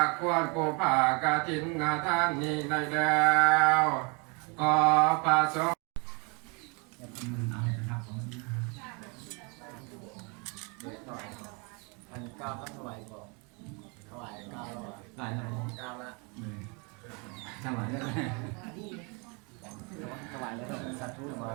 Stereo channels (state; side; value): quieter; left; 32.1 dB